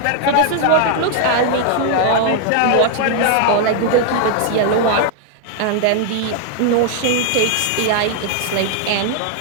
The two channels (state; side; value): different; both; correlation 0.00